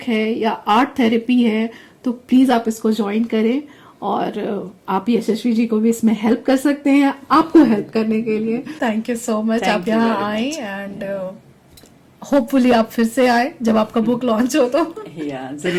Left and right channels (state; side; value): identical; both; correlation 1.00